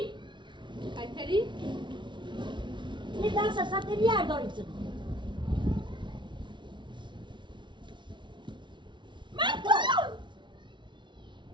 ایتری یه درس سطح بیار دارید من تو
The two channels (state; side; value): late; left; 0.23 ms